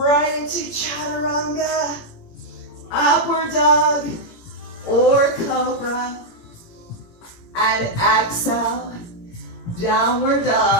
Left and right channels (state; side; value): late; right; 17 ms